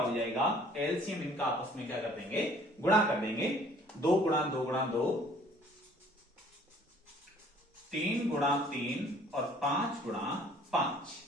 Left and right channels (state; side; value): normal; both; correlation 0.56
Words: हो जाएगा, एलसीएम इनका आपस में क्या कर देंगे गुणा कर देंगे। 2 गुणा 2 गुणा 2, 3 गुणा 3 और 5 गुणा 5।